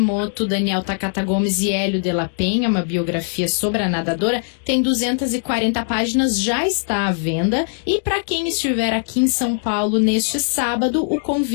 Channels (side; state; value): right; silent; digital silence